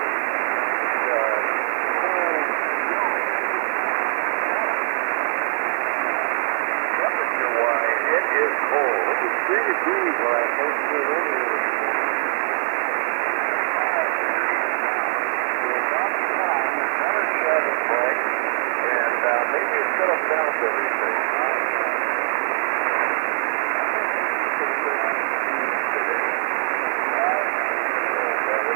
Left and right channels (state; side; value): silent; left; 64 dB below the other